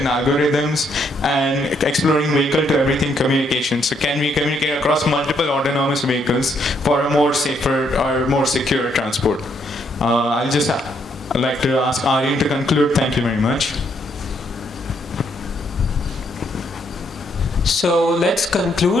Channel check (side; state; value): both; normal; correlation 0.73